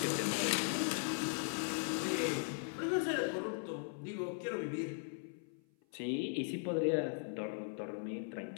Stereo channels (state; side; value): silent; right; 52 dB below the other